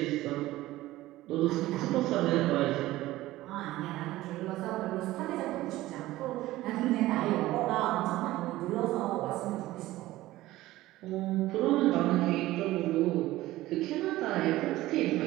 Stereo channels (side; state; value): left; quieter; 16.7 dB